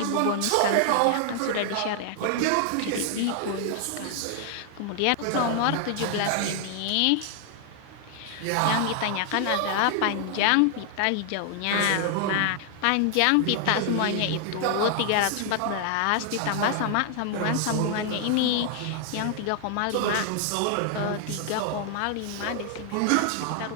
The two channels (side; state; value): both; different; correlation 0.00